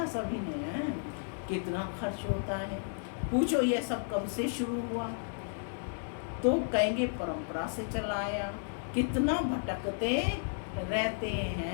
सभी ने, कितना खर्च होता है। पूछो ये सब कब से शुरू हुआ, तो कहेंगे परंपरा से चला आया। कितना भटकते रहते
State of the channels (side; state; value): right; silent; digital silence